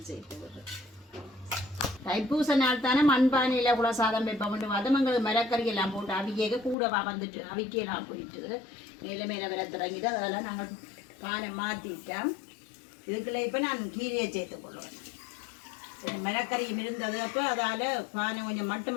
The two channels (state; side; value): drops out; right; at 6.8 s